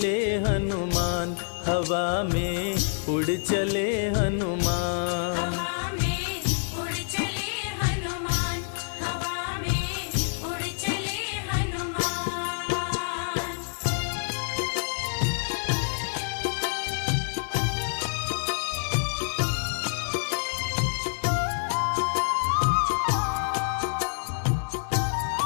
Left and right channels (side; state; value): right; silent; 60 dB below the other